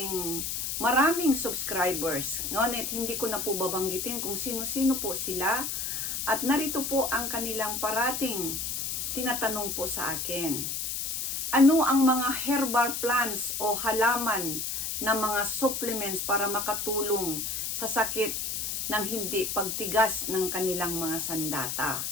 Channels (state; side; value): noise; left; hiss, 2 dB below the sound